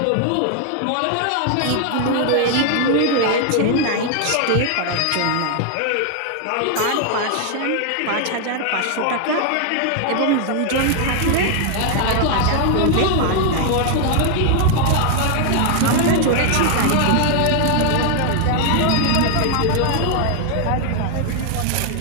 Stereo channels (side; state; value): both; different; correlation 0.00